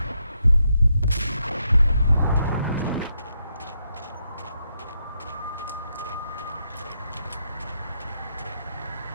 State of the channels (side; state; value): both; inverted; correlation -0.81